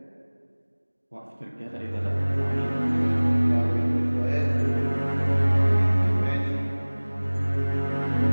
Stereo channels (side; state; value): both; inverted; correlation -1.00